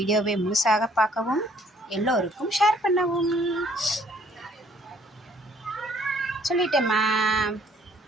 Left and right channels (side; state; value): both; normal; correlation 0.61